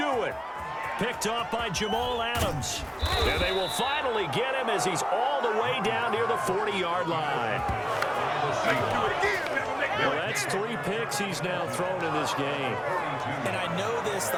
it. Picked off by Jamal Adams. And they will finally get him as he's all the way down near the 40-yard line. Well, that's 3 picks he's now thrown in this game. And I know this, the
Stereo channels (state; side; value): identical; both; correlation 1.00